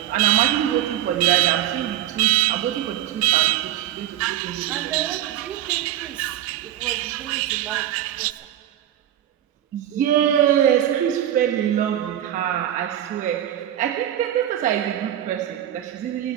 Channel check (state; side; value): quieter; left; 12.2 dB